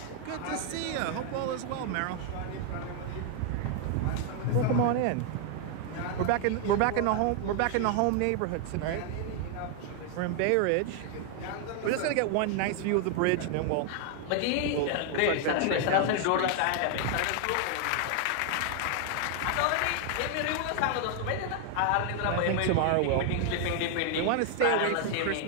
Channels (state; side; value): different; both; correlation 0.00